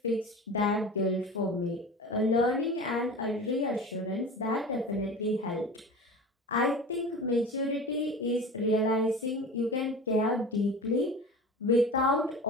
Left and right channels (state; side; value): normal; both; correlation 0.34